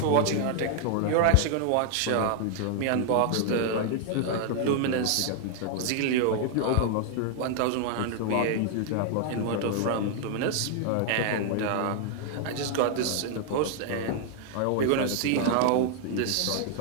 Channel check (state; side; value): different; both; correlation 0.00